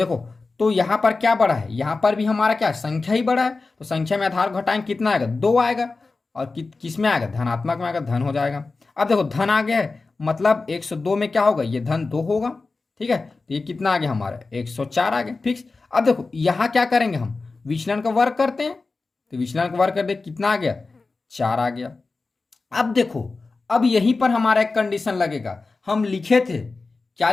तो यहाँ पर क्या बड़ा है, यहाँ पर भी हमारा क्या संख्या ही बड़ा है। तो संख्या में आधार घटाएंगे, कितना आएगा, 2 आएगा। और किस में आएगा, धनात्मक में आएगा, धन हो जाएगा। अब देखो धन आ गया है, मतलब 102 में क्या होगा, ये धन 2 होगा। ठीक है, तो ये कितना आ गया हमारा, 104 आ गया फिक्स। अब देखो यहाँ क्या करेंगे हम, विचलन का वर्ग करते हैं, तो विचलन का वर्ग कर दे, कितना आ गया, 4 आ गया। अब देखो, अब यहीं पर हमारा एक कंडीशन लगेगा। हम लिखे थे, क्या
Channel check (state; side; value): quieter; right; 3.8 dB